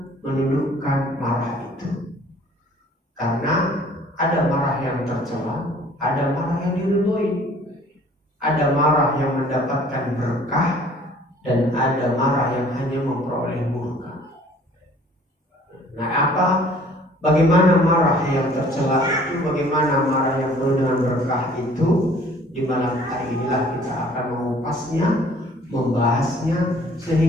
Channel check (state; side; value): normal; both; correlation 0.54